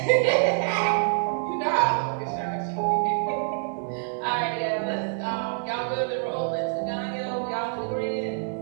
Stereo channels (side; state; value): left; silent; digital silence